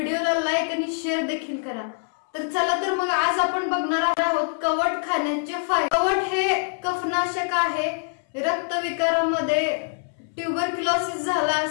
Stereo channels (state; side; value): silent; right; 62 dB below the other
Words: लाईक आणि शेअर देखील करा। तर चला तर मग आज आपण बघणार आहोत कवठ खाण्याचे फायदे। कवठ हे कफनाशक आहे। रक्तविकारामध्ये ट्यूबरक्युलोसिस झाला